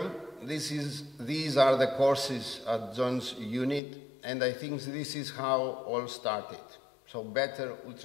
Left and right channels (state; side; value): drops out; right; at 3.8 s